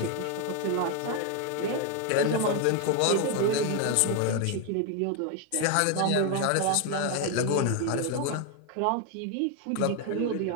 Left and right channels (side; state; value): both; different; correlation 0.01